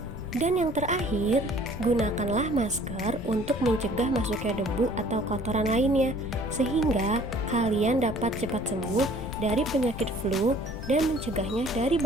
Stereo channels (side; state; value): left; noise; rumble, 10 dB below the sound